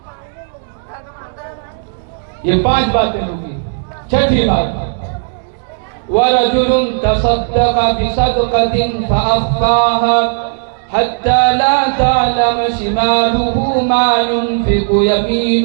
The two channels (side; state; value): left; silent; digital silence